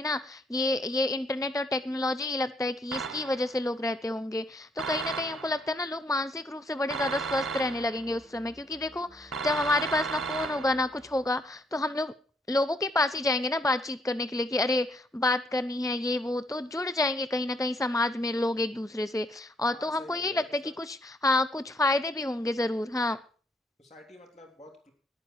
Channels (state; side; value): normal; both; correlation 0.70